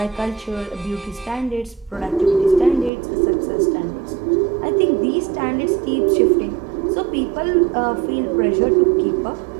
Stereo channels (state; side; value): drops out; left; at 2.9 s